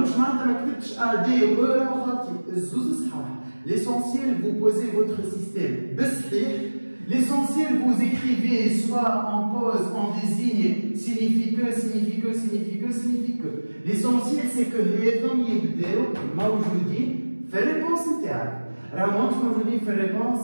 je ne A, D ou E, l'essentiel, vous posez votre système. L'essentiel, vous écrivez soit en pause, en désigne, signifie que, signifie que, signifie que, signifie que. L'essentiel, c'est que les hommes y moi je vous dis, fais réponse interne. Alors, moi je vous dis, fais réponse,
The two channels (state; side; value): inverted; both; correlation -1.00